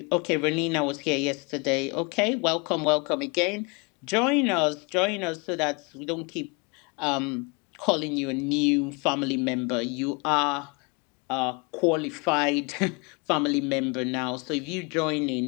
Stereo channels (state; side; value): quieter; right; 30.4 dB